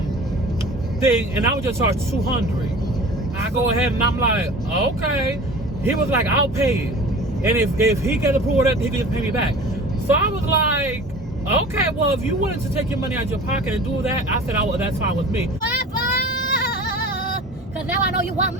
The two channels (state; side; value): normal; both; correlation 0.40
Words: thing, and I would just charge $200. I go ahead and I'm like, okay. He was like, I'll pay it, and if he gets approval, that he can just pay me back. So I was like, okay, well, if you wanted to take your money out of your pocket and do that, I said, that's fine with me. Because now I know you want